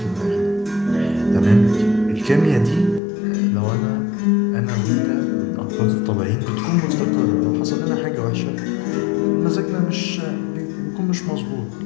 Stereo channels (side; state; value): right; drops out; at 3.0 s